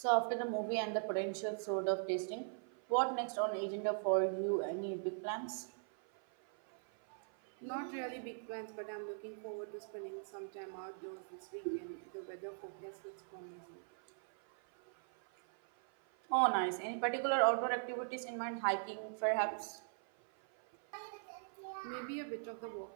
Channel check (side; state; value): left; silent; 51 dB below the other